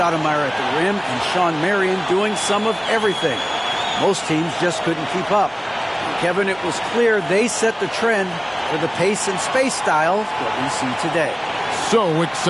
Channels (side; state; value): both; identical; correlation 1.00